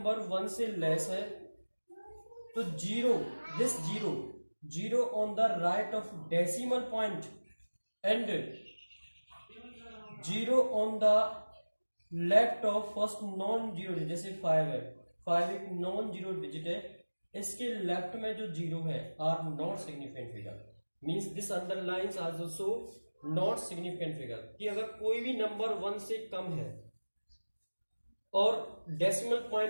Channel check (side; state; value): both; inverted; correlation -1.00